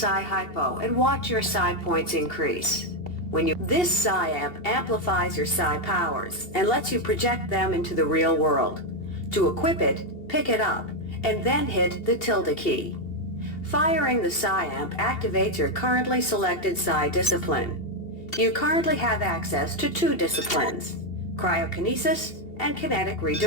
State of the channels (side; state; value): right; late; 2.7 ms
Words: hypo and watch your psi points increase. This psi amp amplifies your psi powers and lets you project them into the real world. To equip it, pick it up, and then hit the tilde key. Firing the psi amp activates your currently selected psi discipline. You currently have access to 2 disciplines, cryokinesis and kinetic